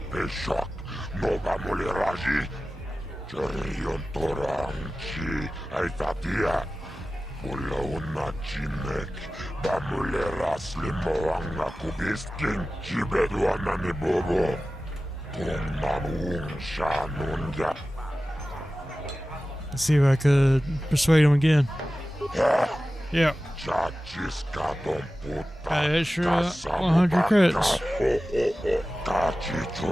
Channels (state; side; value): normal; both; correlation 0.95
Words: Let's see if I could persuade him again. Yeah. Extra 100 credits.